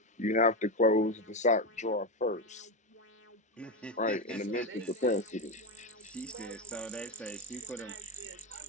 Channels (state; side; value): normal; both; correlation 0.13